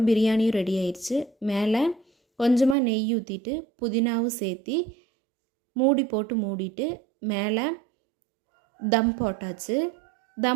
பிரியாணியும் ரெடி ஆயிடுச்சு. மேலே கொஞ்சமாக நெய் ஊற்றிட்டு புதினாவும் சேர்த்தி மூடி போட்டு மூடிட்டு மேலே தம் போட்டாச்சு.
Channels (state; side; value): drops out; left; at 2.8 s